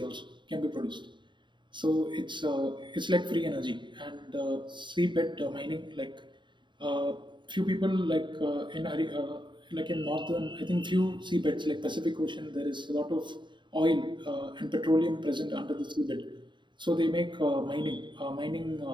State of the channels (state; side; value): late; left; 0.23 ms